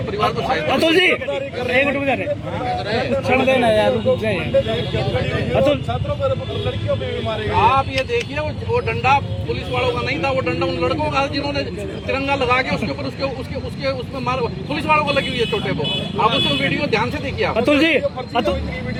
परिवार को सहायता। अतुल जी, एक मिनट में छोड़ देना यार, अतुल, लड़कियों पे भी मारे। आप ये देखिए, वो डंडा पुलिस वालों का नहीं था, वो डंडा उन लड़कों का, जिन्होंने तिरंगा लगा के उसके ऊपर उसके उसमें मार, पुलिस वालों को लगी हुई है चोटे को। आप उसमें वीडियो ध्यान से देखिए। अतुल जी,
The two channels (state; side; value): identical; both; correlation 1.00